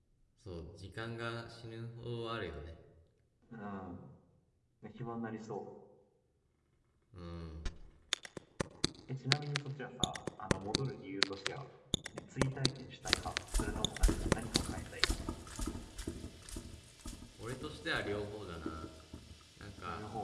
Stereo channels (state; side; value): identical; both; correlation 1.00